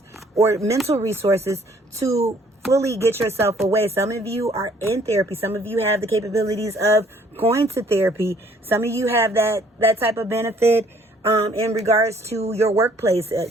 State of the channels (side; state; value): both; normal; correlation 0.60